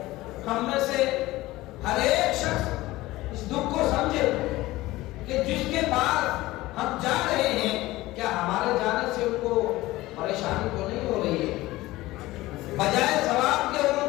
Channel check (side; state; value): right; quieter; 18.3 dB